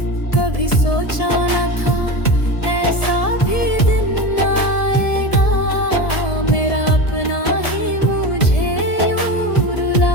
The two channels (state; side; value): late; right; 1.7 ms